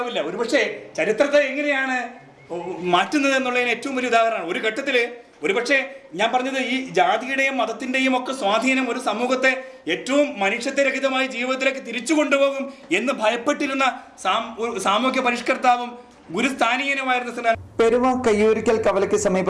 ഒരുപക്ഷെ ചരിത്രത്തെ എങ്ങനെയാണ് മാറ്റുന്നത് എന്നുള്ളതിന് ഏറ്റവും വലിയ ഉദാഹരണമാണ്. ഒരു ഘട്ടത്തില് ഒരുപക്ഷെ ഞാൻ പറഞ്ഞത് ഈ ജാതിയുടെയും മതത്തിന്റെയും ഒക്കെ സ്വാധീനം ഒരു സമൂഹത്തെ ഏറ്റവും മനുഷ്യത്വരഹിതമായ ജീവിതത്തിലേക്ക് തിരിച്ചു കൊണ്ടുപോകും എന്ന് ഭയപ്പെട്ടിരുന്ന സാമൂഹ്യ പരിഷ്കർത്താവും ഗുരുസ്ഥാനീയനുമായിരുന്ന പെരുവ കയ്യൂരിക്കൽ കവലയ്ക്ക്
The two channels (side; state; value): both; identical; correlation 1.00